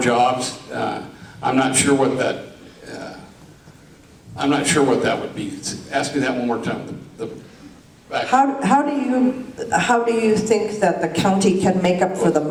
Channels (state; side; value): identical; both; correlation 1.00